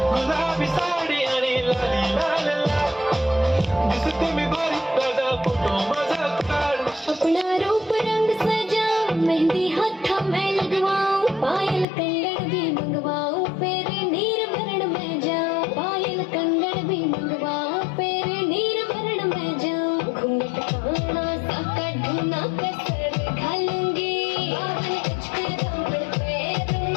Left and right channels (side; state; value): right; drops out; at 11.9 s